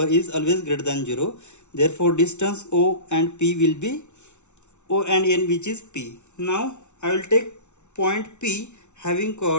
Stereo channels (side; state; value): right; late; 0.82 ms